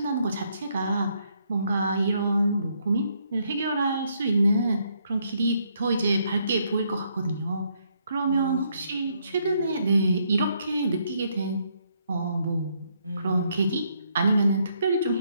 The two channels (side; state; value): both; inverted; correlation -0.73